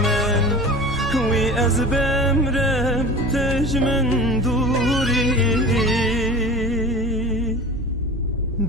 من وی از بمرم تجمن دوری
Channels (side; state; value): both; normal; correlation 0.36